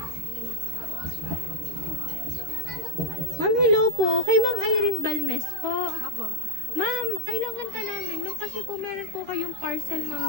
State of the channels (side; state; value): left; late; 13 ms